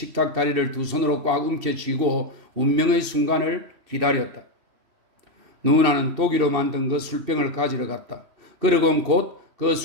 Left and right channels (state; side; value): late; left; 2.6 ms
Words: 다리를 두 손으로 꽉 움켜쥐고 운명의 순간을 기다렸다. 누나는 독일로 만든 그 술병을 가지러 갔다. 그러곤 곧 그